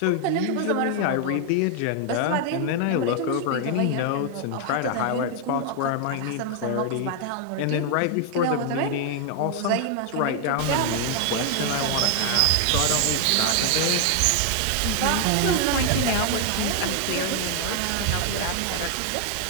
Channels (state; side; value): different; both; correlation 0.00